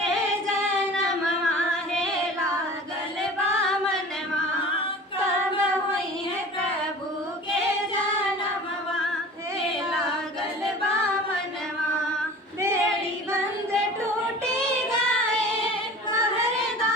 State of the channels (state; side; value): normal; both; correlation 0.40